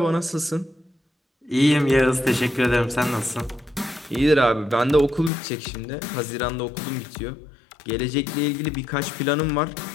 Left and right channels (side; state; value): right; drops out; at 5.3 s